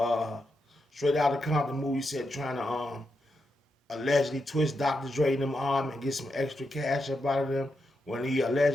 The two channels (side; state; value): both; normal; correlation 0.85